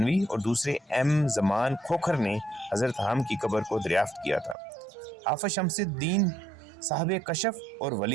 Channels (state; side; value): drops out; left; at 4.5 s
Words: और दूसरे एम ज़मान खोखर ने हज़रत हाम की कब्र को दरियाफ्त किया था। हाफिज शमसुद्दीन साहब कशफ और